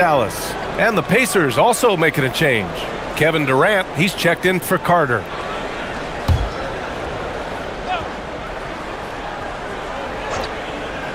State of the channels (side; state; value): both; identical; correlation 1.00